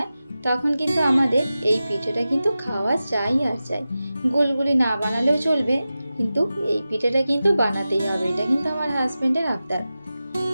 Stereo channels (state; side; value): inverted; both; correlation -0.94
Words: তখন কিন্তু আমাদের এই পিঠেটা কিন্তু খাওয়া চাই আর চাই। গুলগুলি না বানালেও চলবে, কিন্তু এই পিঠেটা কিন্তু বানাতেই হবে। এটা কিন্তু আমার হাজবেন্ডের আবদার।